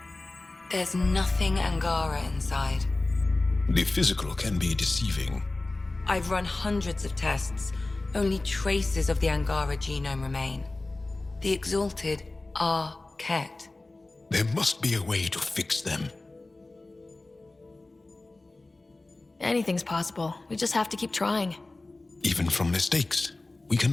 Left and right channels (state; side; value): quieter; right; 3.0 dB